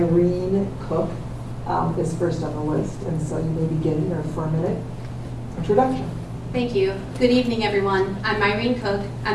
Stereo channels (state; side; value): identical; both; correlation 1.00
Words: Cook is first on the list. And so you may begin your 4-minute introduction. Thank you. Good evening, everyone. I'm Myrene Cook.